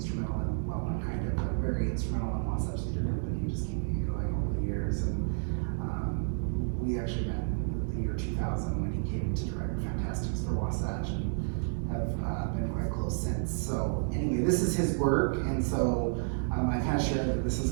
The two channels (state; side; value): silent; left; digital silence